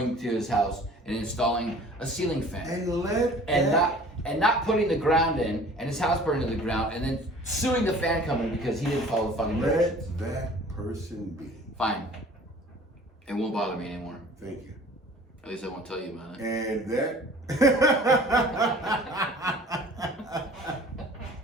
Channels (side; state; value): both; normal; correlation 0.48